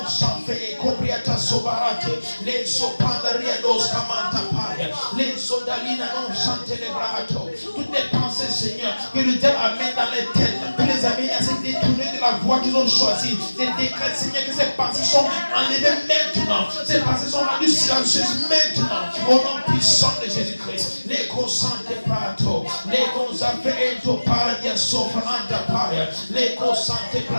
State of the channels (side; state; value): both; inverted; correlation -1.00